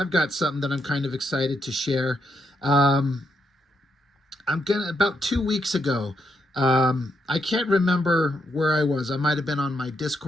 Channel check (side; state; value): both; normal; correlation 0.80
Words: got something that I'm kind of excited to share. Um, about 2 weeks ago. I can't remember where I was. I might have been on my